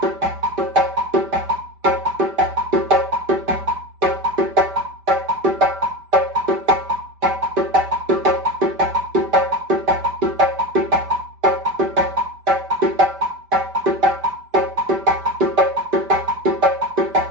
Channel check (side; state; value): left; late; 5.1 ms